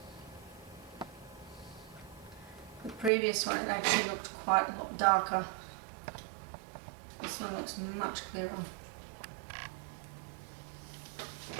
The previous one, it actually looked quite a lot darker. This one looks much clearer.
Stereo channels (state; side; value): drops out; left; at 3.1 s